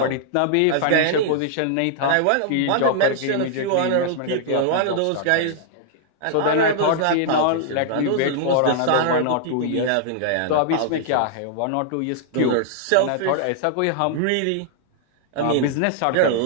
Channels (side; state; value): both; different; correlation -0.01